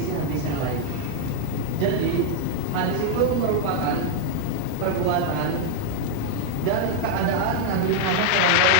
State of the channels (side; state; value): both; different; correlation 0.00